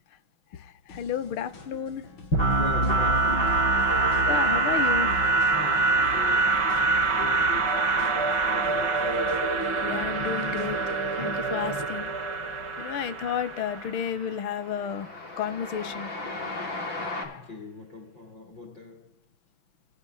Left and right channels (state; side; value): late; right; 6.0 ms